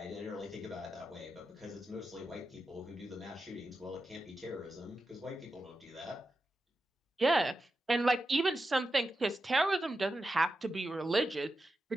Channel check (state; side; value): normal; both; correlation 0.90